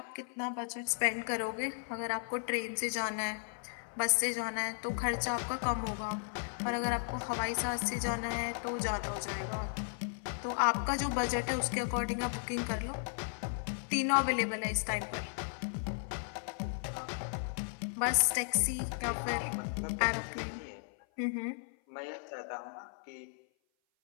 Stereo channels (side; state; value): right; silent; 54 dB below the other